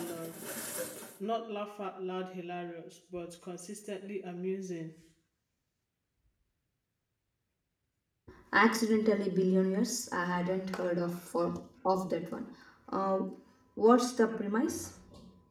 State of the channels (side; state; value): both; identical; correlation 1.00